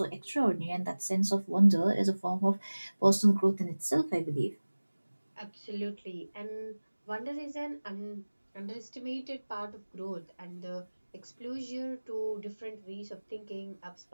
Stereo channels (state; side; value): inverted; both; correlation -1.00